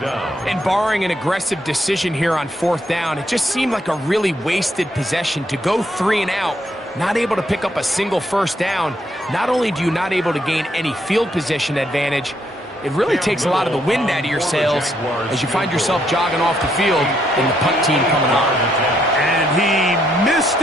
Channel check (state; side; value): normal; both; correlation 0.74